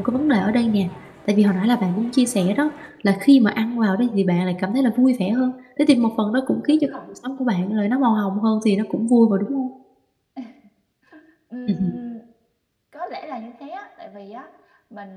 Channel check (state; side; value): identical; both; correlation 1.00